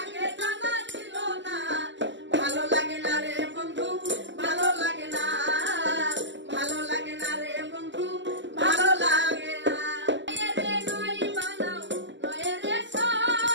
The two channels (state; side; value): late; left; 0.54 ms